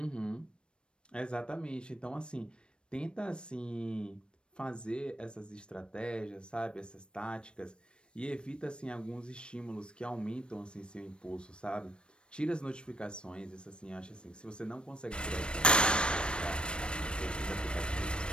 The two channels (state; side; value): late; right; 0.055 ms